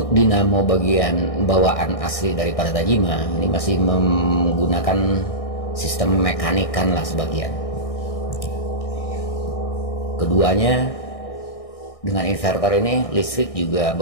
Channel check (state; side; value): late; right; 1.6 ms